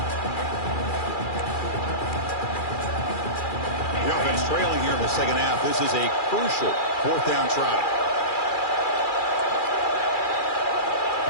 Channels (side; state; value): right; late; 2.4 ms